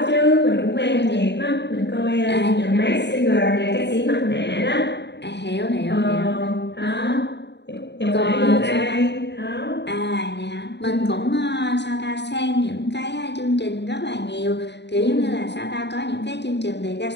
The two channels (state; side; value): late; right; 0.50 ms